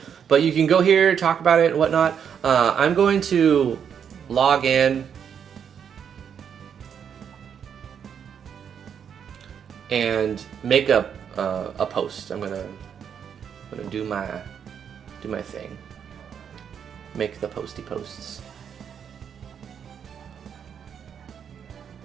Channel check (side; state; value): left; quieter; 7.8 dB